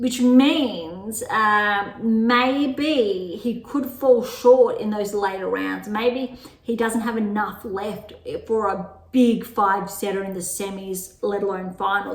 means maybe he could fall short in those later rounds. Maybe he doesn't have enough left for a big 5-setter in the semis, let alone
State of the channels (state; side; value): identical; both; correlation 1.00